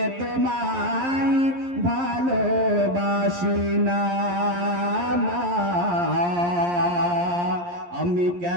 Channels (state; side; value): late; left; 11 ms